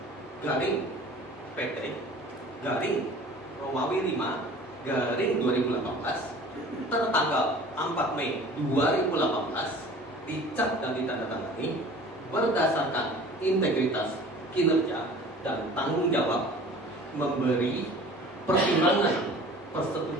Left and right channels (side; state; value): both; normal; correlation 0.45